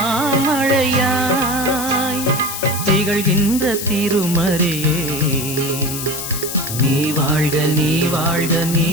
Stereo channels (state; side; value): noise; left; hiss, 6 dB below the sound